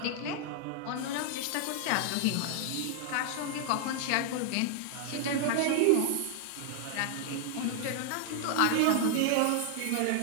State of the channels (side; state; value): both; different; correlation 0.00